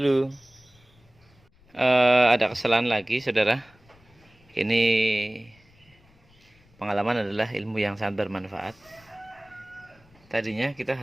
Ada kesalahan lagi, saudara. Ini pengalaman adalah ilmu yang sangat bermanfaat. Tadinya kita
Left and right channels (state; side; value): noise; left; rumble, 29 dB below the sound